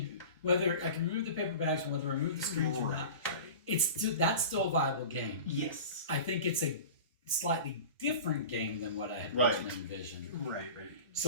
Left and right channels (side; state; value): both; inverted; correlation -0.35